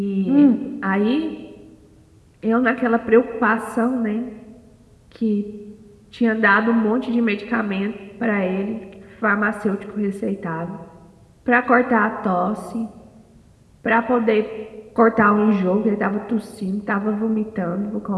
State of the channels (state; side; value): identical; both; correlation 1.00